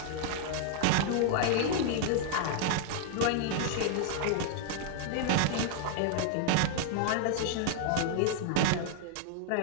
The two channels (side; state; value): both; different; correlation 0.00